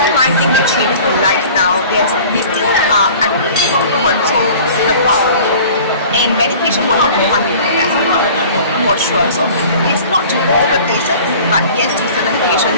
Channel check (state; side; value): inverted; both; correlation -0.45